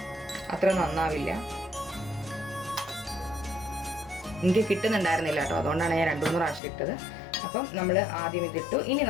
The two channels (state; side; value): drops out; right; at 6.6 s